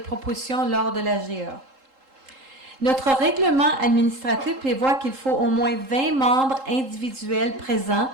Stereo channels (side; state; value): left; late; 3.8 ms